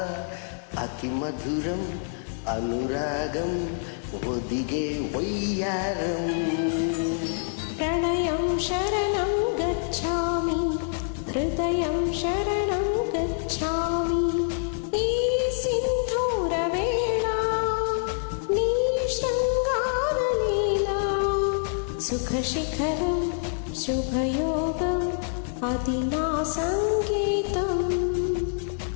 అతి మధురం అనురాగం ఒదిగే వయ్యారం. ప్రణయం శరణం గచ్చామి, హృదయం శరణం గచ్చామి. ఈ సింధూర వేళ నీ శృంగార లీలా సుఖశిఖరం శుభయోగం అది నా సంగీతం.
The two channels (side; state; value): right; silent; digital silence